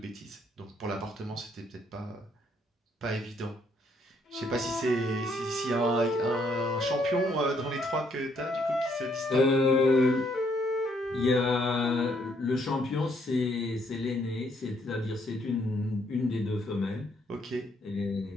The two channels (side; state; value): both; normal; correlation 0.70